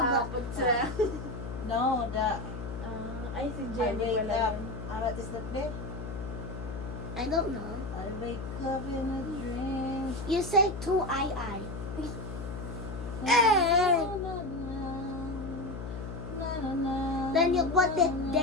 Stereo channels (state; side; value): noise; left; hum, 8 dB below the sound